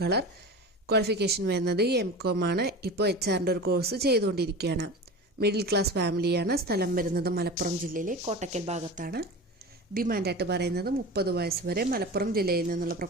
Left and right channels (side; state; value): both; normal; correlation 0.31